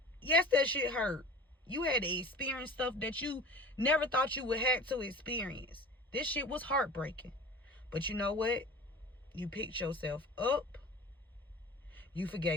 yes, that shit hurt. You had to experience stuff that you never thought you would have to experience. This shit was heartbreaking. But you know what? You picked yourself up. You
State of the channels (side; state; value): both; normal; correlation 0.38